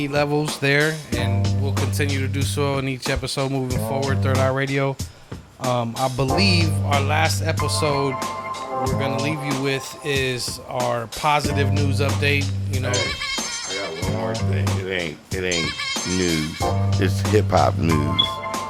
levels there, and we'll continue to do so in each episode moving forward. Third Eye Radio. I believe our last episode we're gonna leave you with is our positive news update. I got one more thing. It ain't news. It's hip hop news.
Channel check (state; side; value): identical; both; correlation 1.00